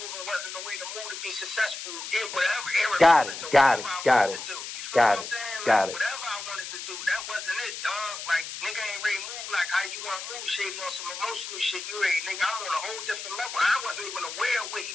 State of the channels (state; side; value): noise; left; hiss, 8 dB below the sound